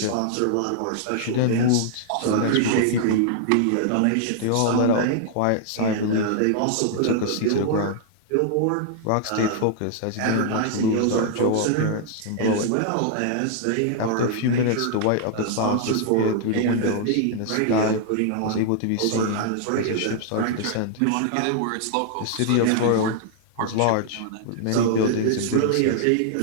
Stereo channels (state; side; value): different; both; correlation 0.00